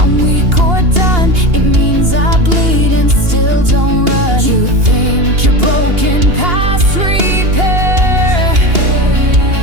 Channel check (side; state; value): left; late; 2.8 ms